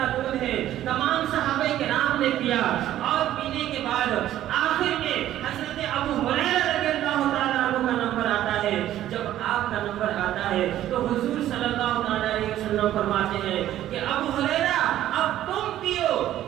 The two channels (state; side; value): quieter; left; 12.7 dB